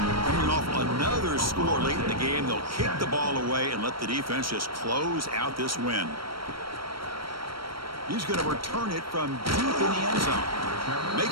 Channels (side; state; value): left; late; 0.74 ms